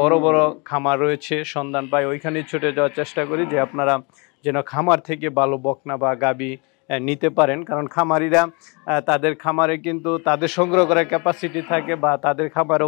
বড় খামার রয়েছে সন্ধান পাই, ওইখানে ছুটে যাওয়ার চেষ্টা করি যে আপনারা যেন খামার থেকে ভালো বকনা বা গাবি নিতে পারেন। কারণ খামারিরা তাদের খামারে কিন্তু তাদের সংগ্রহ করার ক্যাপাসিটি থাকে, বা তাদের খামারেও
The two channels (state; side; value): quieter; right; 31.1 dB